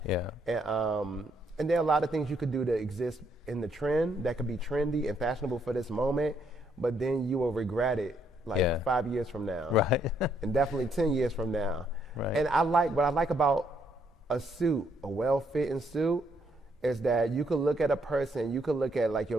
Yeah. And there are a lot of things you could do to exist in the trend that could be trendy and fashionable for this moment, but then you will regret it. 5 years from now, right? And definitely 10 years from now, right? And what I like about a suit, a well-fitting suit, is that you could look at a person, you could look at like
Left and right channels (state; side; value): normal; both; correlation 0.72